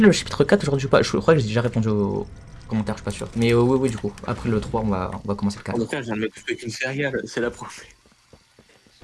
chapitre 4 aujourd'hui ou pas? Je crois que j'ai déjà répondu aux commentaires, je suis pas sûr. Mais oui, du coup. Après le 3, on va commencer le 4. Je viens de me couper qu'une céréale, c'est la première.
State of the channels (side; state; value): both; identical; correlation 1.00